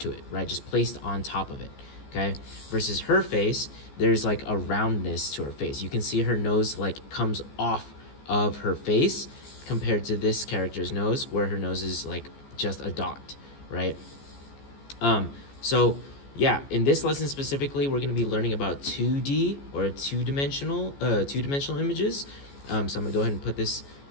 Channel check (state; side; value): late; right; 14 ms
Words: to it, right? Just placed on top of it, okay? Versus her face, there's like a roundness to her face. You can see her nose like comes off of her face compared to this character's nose where her nose is like just a dot, right? So yeah, in this lesson specifically, we're going to be learning about 2D or two-dimensional images. So I'm going to go ahead and put this